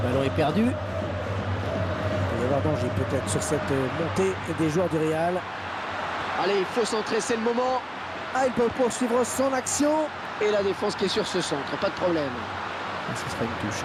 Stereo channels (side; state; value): both; identical; correlation 1.00